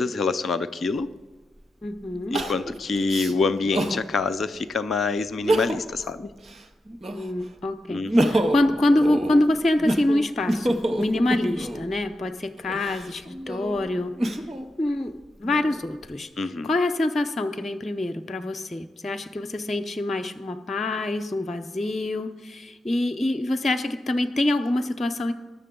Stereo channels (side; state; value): both; normal; correlation 0.88